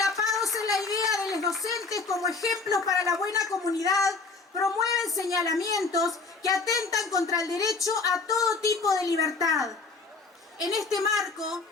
en la idea de los docentes como ejemplos para la buena comunidad, promueven señalamientos que atentan contra el derecho a todo tipo de libertad. En este marco,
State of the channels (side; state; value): right; quieter; 4.1 dB